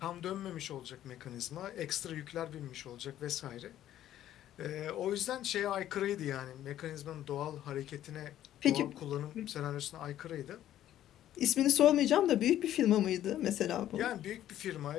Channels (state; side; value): quieter; right; 12.2 dB